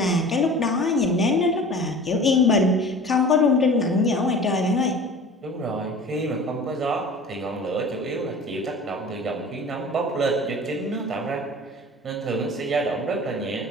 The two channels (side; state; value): both; normal; correlation 0.41